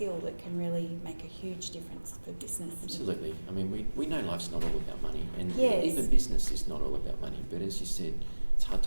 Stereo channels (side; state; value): both; inverted; correlation -1.00